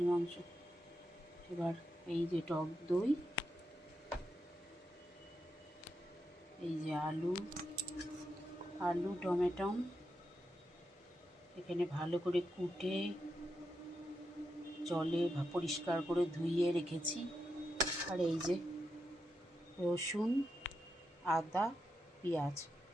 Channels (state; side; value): normal; both; correlation 0.85